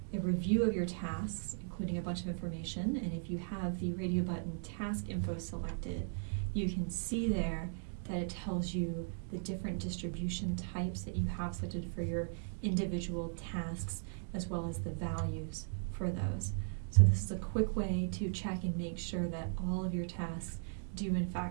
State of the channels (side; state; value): left; silent; digital silence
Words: a review of your tasks, including a bunch of information. And if you have the radio button task info selected, you can see there that it tells you the different distribution types that you have selected for your individual tasks, as well as the values for those. So this is a quick way to check and make sure that all of your tasks do in